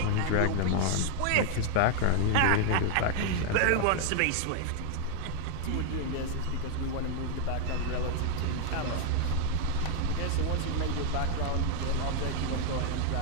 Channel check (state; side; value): different; both; correlation 0.00